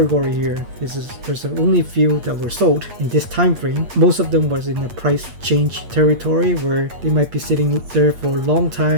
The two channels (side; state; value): left; late; 8.5 ms